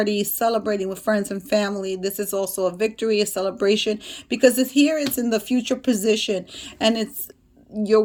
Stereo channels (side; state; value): both; identical; correlation 1.00